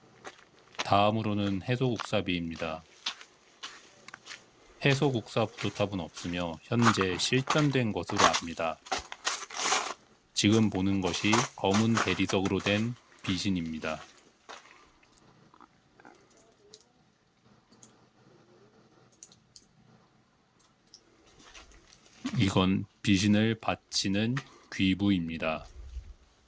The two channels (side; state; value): both; identical; correlation 1.00